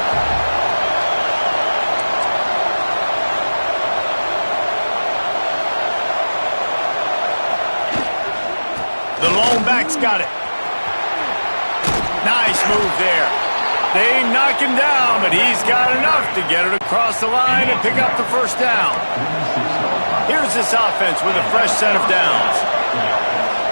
The lone back's got it. Nice move there. They knock him down, but he's got enough to get it across the line and pick up the first down. Here's this offense with a fresh set of downs.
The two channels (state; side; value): inverted; both; correlation -1.00